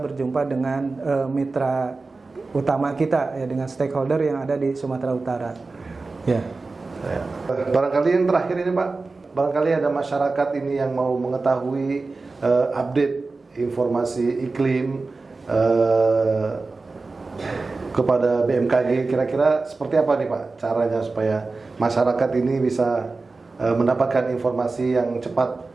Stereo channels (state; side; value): quieter; left; 3.8 dB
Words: berjumpa dengan mitra utama kita ya, dengan stakeholder yang ada di Sumatera Utara. Ya. Barangkali yang terakhir ini Pak, barangkali ada masyarakat ini yang mau mengetahui update informasi iklim kepada BMKG, kira-kira seperti apa nih Pak caranya supaya masyarakat ini bisa mendapatkan informasi yang cepat